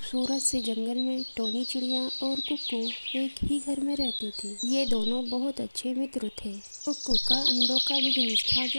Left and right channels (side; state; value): both; inverted; correlation -1.00